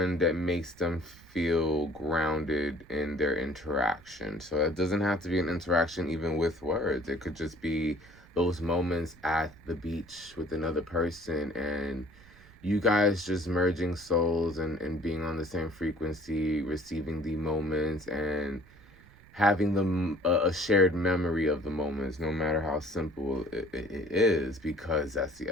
that makes them feel grounded in their interaction. So it doesn't have to be an interaction even with words. It could just be those moments at the beach with another person, and you guys just merging souls and being on the same frequency, receiving the moments, and having them a shared memory of the moments, no matter how simple it is, because that's the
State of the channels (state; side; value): noise; right; rumble, 24 dB below the sound